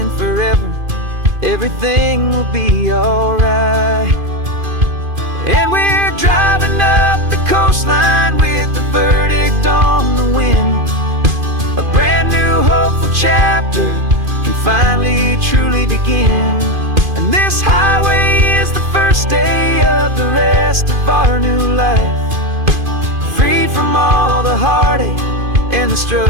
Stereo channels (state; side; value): late; left; 2.5 ms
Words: forever, everything will be alright. And we're driving up the coastline with the verdict on the wind. A brand new hopeful chapter can finally truly begin. And this highway is the first day of the rest of our new life, freed from all the heartache and the